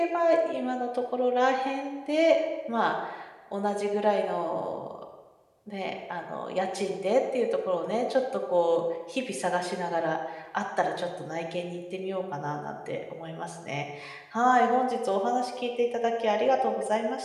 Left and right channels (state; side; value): identical; both; correlation 1.00